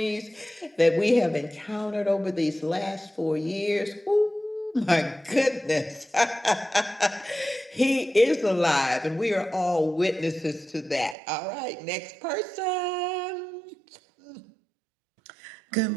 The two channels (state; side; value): drops out; left; at 11.2 s